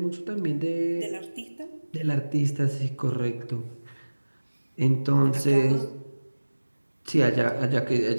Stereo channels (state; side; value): inverted; both; correlation -1.00